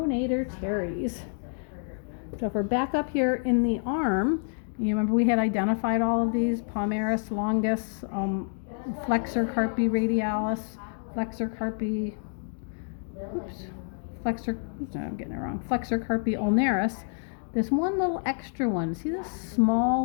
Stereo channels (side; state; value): right; silent; 59 dB below the other